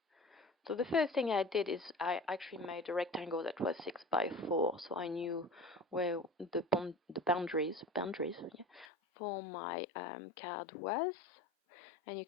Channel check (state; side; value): drops out; right; at 8.8 s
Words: So the first thing I did is I actually made a rectangle that was 6x4, so I knew where the boundaries for my card was. And you